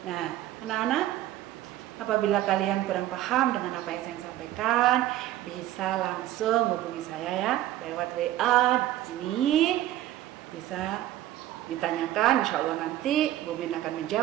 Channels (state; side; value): quieter; left; 13.9 dB